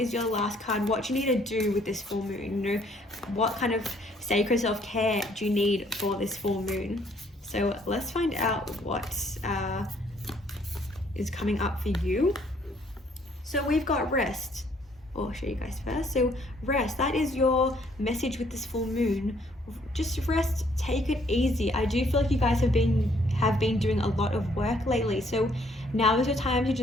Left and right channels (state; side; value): normal; both; correlation 0.65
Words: your last card, what you need to do with this full moon. You know, what kind of sacred self-care do you need for this full moon? So let's find out what is coming up for you. So we've got rest. I'll show you guys first. So rest, that is your message with this full moon. Just rest, take it easy. I do feel like you guys have been doing a lot of work lately, so now is your time to